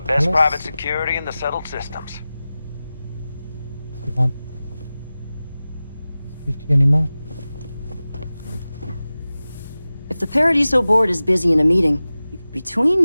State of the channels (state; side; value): inverted; both; correlation -0.96